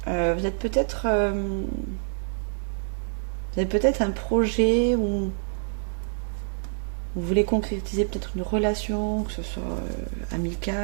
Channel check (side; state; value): left; silent; digital silence